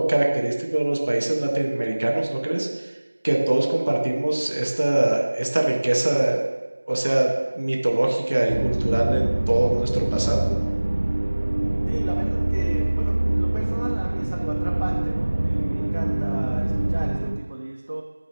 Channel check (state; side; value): inverted; both; correlation -1.00